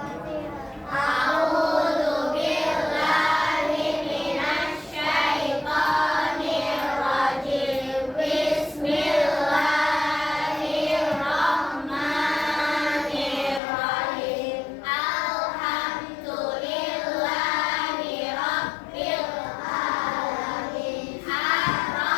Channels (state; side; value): drops out; right; at 13.6 s